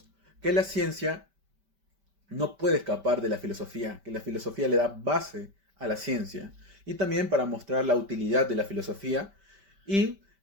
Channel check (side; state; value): left; late; 5.1 ms